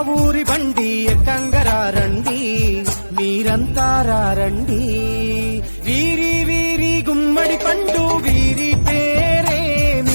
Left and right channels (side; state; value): both; inverted; correlation -1.00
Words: ఊరి బండి ఎక్కంగరారండి, మీరంతా రారండి. వీరి వీరి గుమ్మడి పండు వీరి